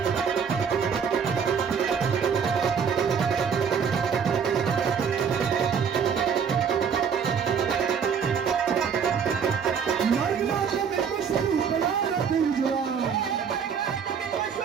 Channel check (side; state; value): left; quieter; 6.8 dB